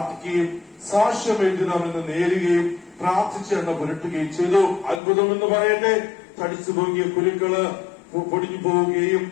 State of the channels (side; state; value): right; drops out; at 5.0 s